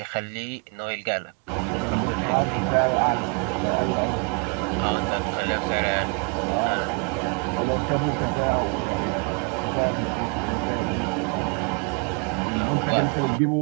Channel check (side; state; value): left; quieter; 33.8 dB